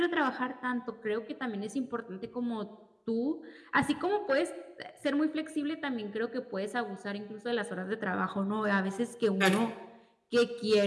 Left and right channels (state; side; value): identical; both; correlation 1.00